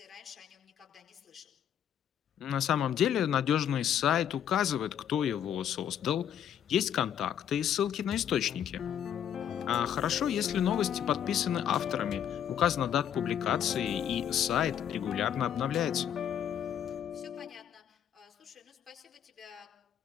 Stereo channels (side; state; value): right; quieter; 9.5 dB